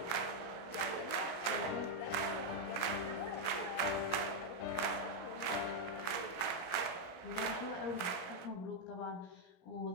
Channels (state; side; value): late; right; 17 ms